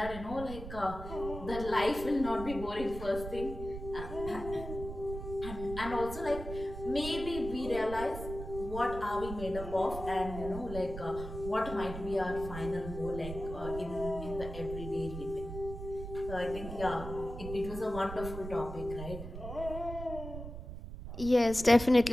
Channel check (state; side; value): noise; right; rumble, 9 dB below the sound